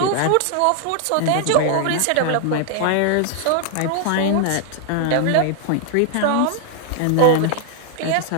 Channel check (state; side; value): different; both; correlation 0.00